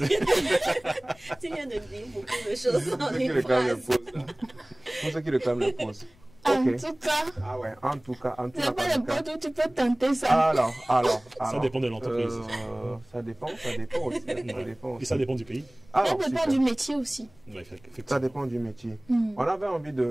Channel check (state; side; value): noise; left; rumble, 29 dB below the sound